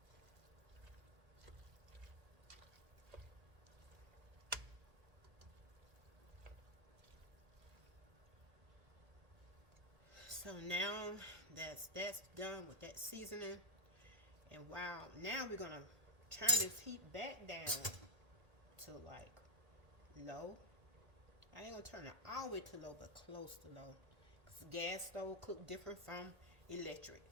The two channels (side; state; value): left; late; 1.8 ms